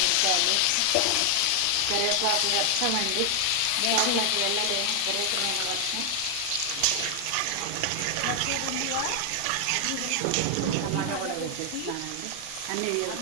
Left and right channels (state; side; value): different; both; correlation 0.00